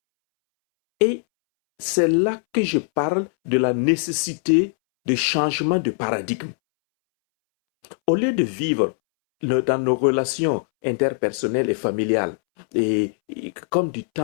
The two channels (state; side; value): silent; right; 64 dB below the other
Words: c'est là que je parle de la nécessité de changement de paradigme. Au lieu de vivre dans nos relations interpersonnelles et familiales comme du